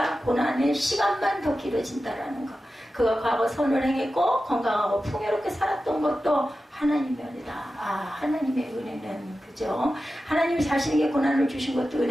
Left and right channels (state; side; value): normal; both; correlation 0.93